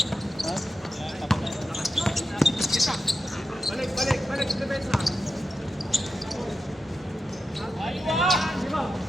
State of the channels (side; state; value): both; normal; correlation 0.89